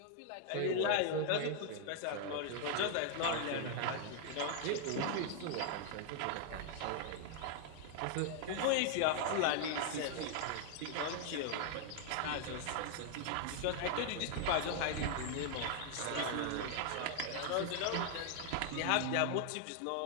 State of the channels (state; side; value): different; both; correlation 0.00